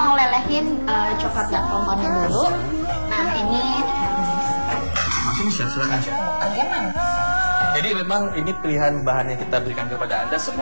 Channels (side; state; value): both; inverted; correlation -1.00